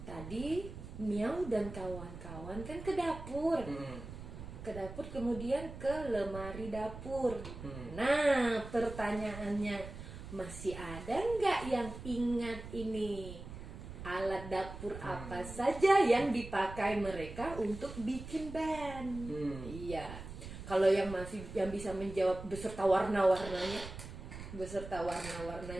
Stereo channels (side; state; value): right; noise; rumble, 11 dB below the sound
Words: Tadi Miau dan kawan-kawan kan ke dapur. Ke dapur kemudian ke lemari dapur. Nah, pertanyaannya masih ada nggak yang ingat ini? Alat dapur apa saja yang dipakai mereka untuk bikin band? Iya. Kalau yang bisa menjawab beserta warna-warnanya,